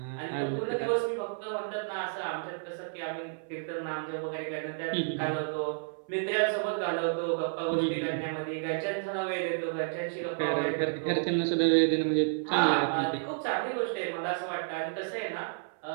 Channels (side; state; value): left; silent; 57 dB below the other